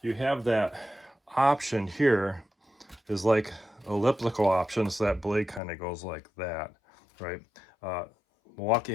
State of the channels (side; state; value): right; drops out; at 5.6 s